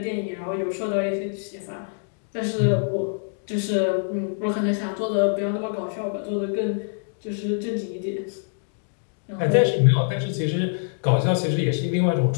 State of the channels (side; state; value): right; silent; digital silence